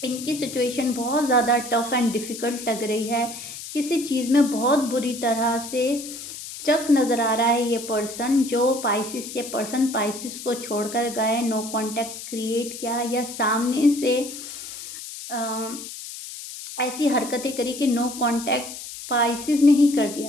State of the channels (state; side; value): noise; left; hiss, 11 dB below the sound